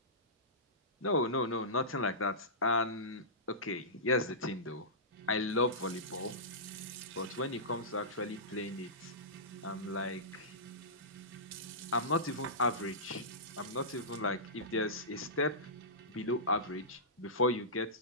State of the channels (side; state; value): both; normal; correlation -0.19